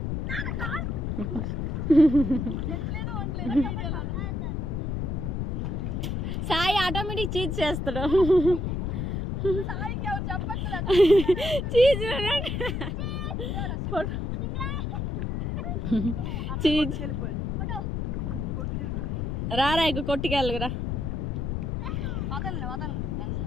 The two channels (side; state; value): left; noise; rumble, 2 dB below the sound